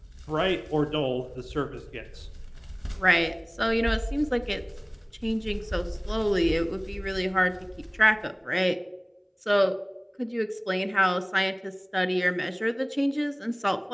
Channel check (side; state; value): both; identical; correlation 1.00